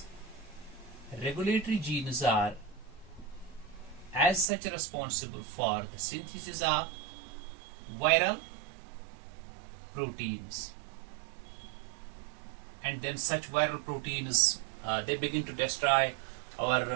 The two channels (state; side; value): drops out; left; at 4.5 s